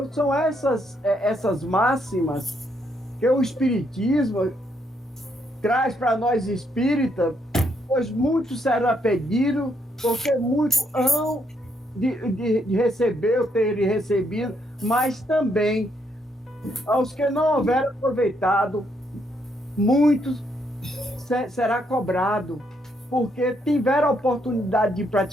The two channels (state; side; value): normal; both; correlation 0.75